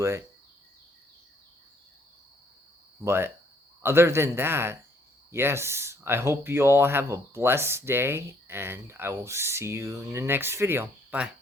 it. But other than that, yes, I hope you all have a blessed day, and I will see you in the next video. Bye.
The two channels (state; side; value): normal; both; correlation 0.65